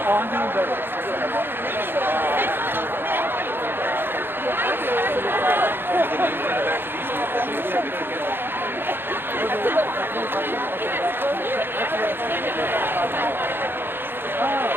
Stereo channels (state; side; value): late; left; 0.10 ms